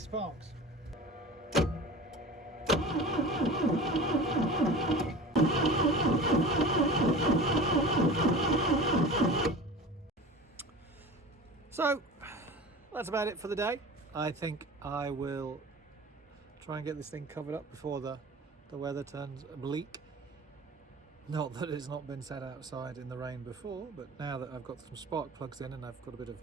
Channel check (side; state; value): both; normal; correlation 0.36